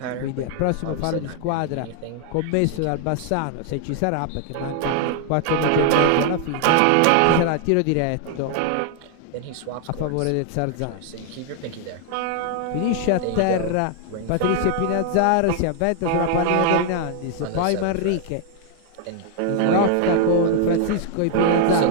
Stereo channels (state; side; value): different; both; correlation 0.00